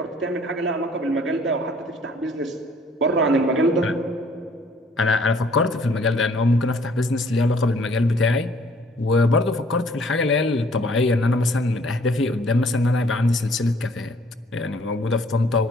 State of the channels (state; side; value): normal; both; correlation 0.60